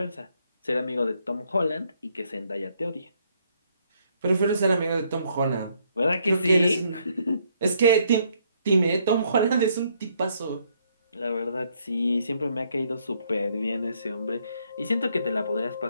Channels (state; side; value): inverted; both; correlation -0.70